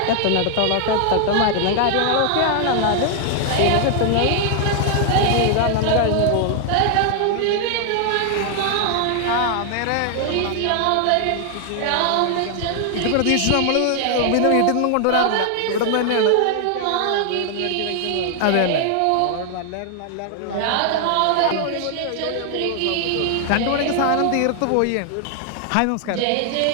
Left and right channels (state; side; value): different; both; correlation 0.00